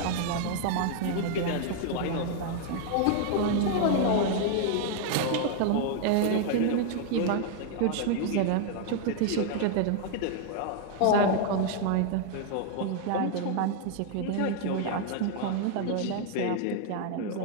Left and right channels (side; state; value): both; different; correlation 0.00